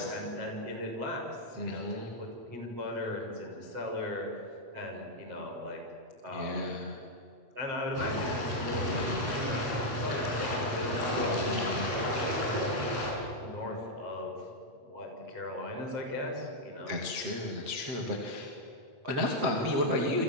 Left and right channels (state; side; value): late; left; 8.3 ms